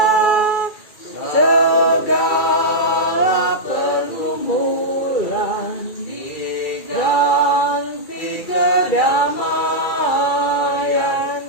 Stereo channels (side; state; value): right; late; 2.3 ms